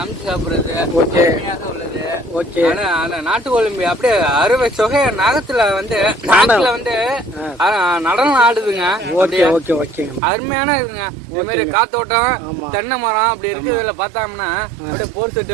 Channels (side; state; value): left; drops out; at 10.2 s